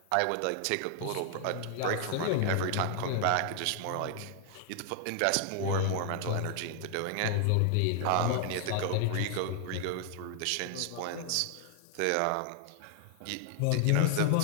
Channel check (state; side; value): different; both; correlation 0.00